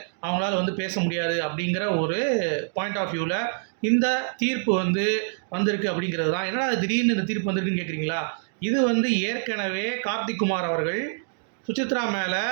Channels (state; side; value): silent; left; 61 dB below the other